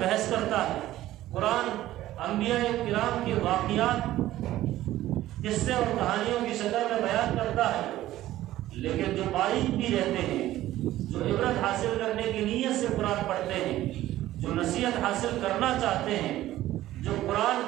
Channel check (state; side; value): quieter; left; 14.7 dB